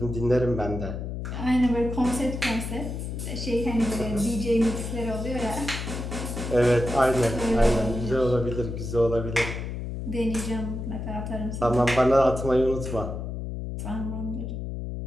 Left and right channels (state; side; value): noise; left; hum, 5 dB below the sound